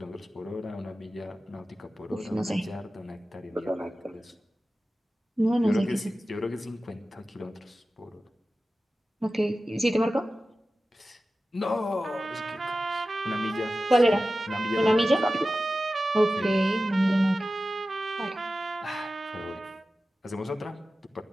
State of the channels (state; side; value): normal; both; correlation 0.95